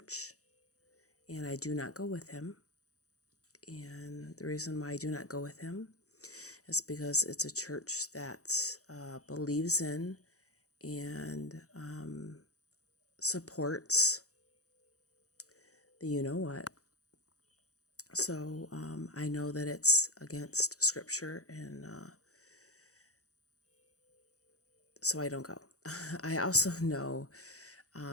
and I do not go with him. And the reason why I do not go with him is because it's a church that believes in and supports the you know what. So I know that it's against scripture, and so I don't go. I also know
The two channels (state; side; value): late; right; 0.65 ms